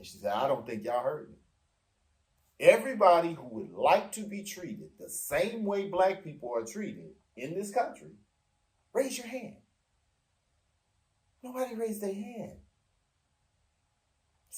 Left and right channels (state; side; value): identical; both; correlation 1.00